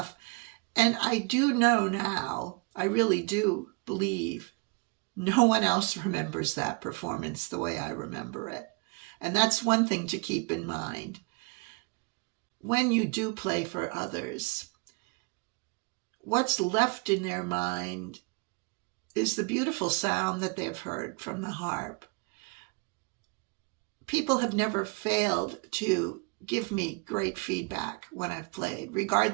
And I do know now, I really do believe no one else remembers that performance the way I remember it. And that's one thing to keep in mind. When you do play for others, what's left in their mind is the beautiful sound that they've heard from the harp. People have never failed to give me great feedback when I've played,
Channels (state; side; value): quieter; left; 31.0 dB